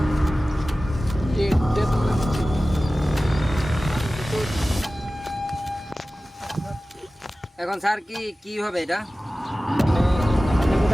এখন স্যার কি হবে এটা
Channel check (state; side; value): normal; both; correlation 0.96